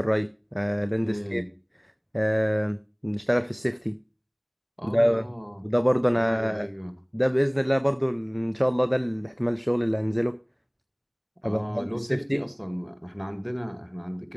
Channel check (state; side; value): identical; both; correlation 1.00